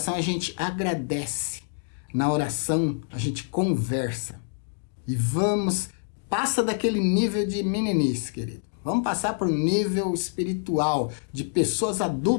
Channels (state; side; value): silent; right; digital silence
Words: a gente agradece. Na oração a gente conversa. E passa daquele nível de meninice, querido. Vamos passar para o nível espiritual de pessoas